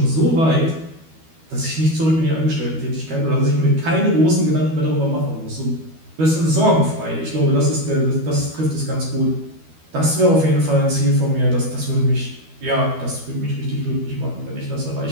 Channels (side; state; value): left; late; 12 ms